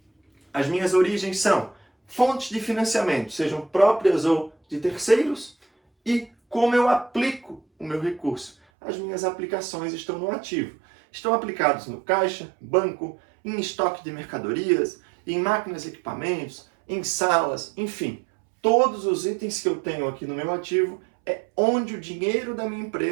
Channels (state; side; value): drops out; left; at 8.6 s